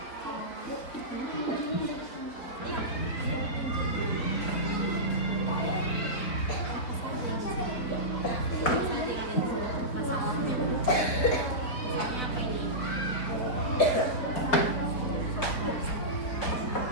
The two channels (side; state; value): right; late; 4.3 ms